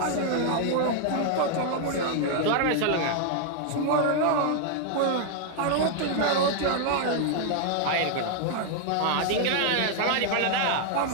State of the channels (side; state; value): both; different; correlation 0.00